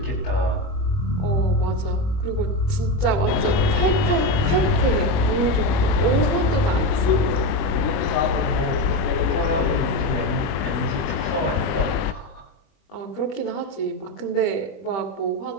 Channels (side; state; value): right; late; 21 ms